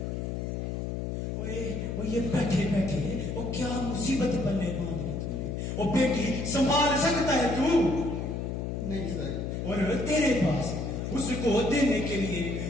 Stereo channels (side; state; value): left; noise; hum, 3 dB below the sound